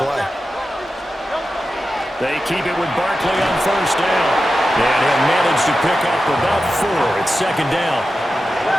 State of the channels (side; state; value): both; normal; correlation 0.92